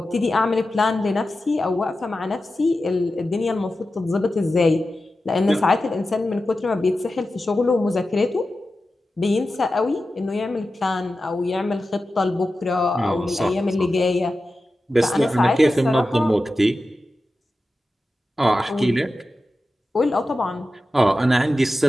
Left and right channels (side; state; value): both; normal; correlation 0.93